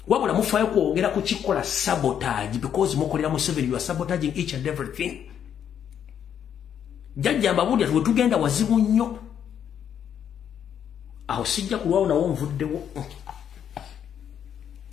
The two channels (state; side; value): quieter; right; 8.9 dB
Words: wabula mufayo kwogera ku kikola sabotage because mukolera mu Museveni, you are sabotaging each and everything. Jajja mbabulya tuwe tugenda wazibu nnyo aho sijja kulwawo nawo nvuddewo.